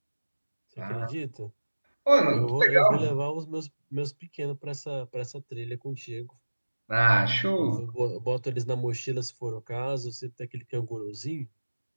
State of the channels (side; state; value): both; inverted; correlation -1.00